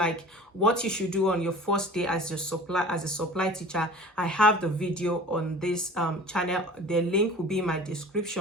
what you should do on your first day as a supply teacher, I have the video on this channel. The link will be in my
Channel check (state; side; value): normal; both; correlation 0.43